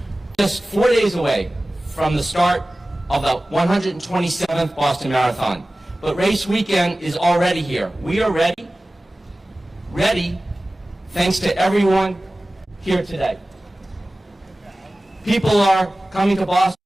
Just 4 days away from the start of the 127th Boston Marathon. But race weekend is already here. We are ready thanks to everyone here today. People are coming to Boston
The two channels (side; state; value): both; normal; correlation 0.97